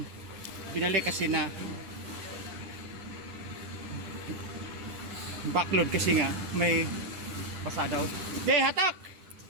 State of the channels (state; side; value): late; left; 9.9 ms